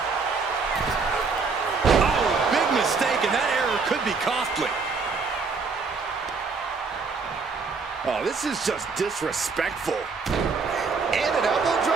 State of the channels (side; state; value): left; quieter; 4.7 dB